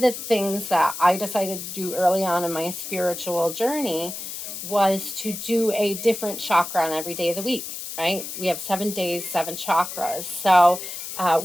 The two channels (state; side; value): noise; left; hiss, 8 dB below the sound